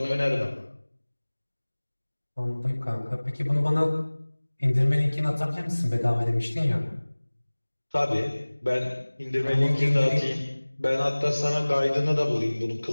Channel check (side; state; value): both; inverted; correlation -1.00